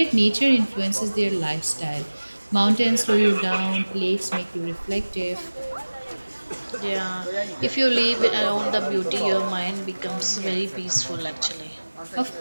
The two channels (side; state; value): both; inverted; correlation -1.00